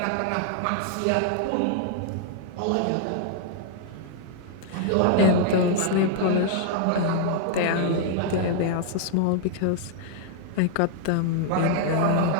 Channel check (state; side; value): different; both; correlation 0.00